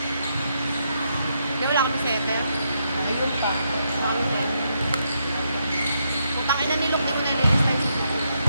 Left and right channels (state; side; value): inverted; both; correlation -0.79